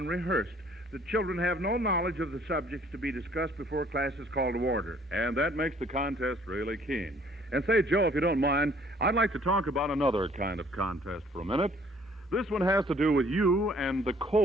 The children have no knowledge of the subjects to be discussed before class is called to order. And that makes the contest really keen. And say, Joe, if you don't mind, I'd like to talk about another kind of contest for a minute. This one has to do with you and the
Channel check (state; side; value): normal; both; correlation 0.59